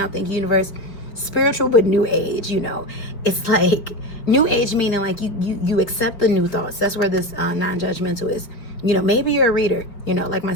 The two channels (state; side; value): late; right; 4.9 ms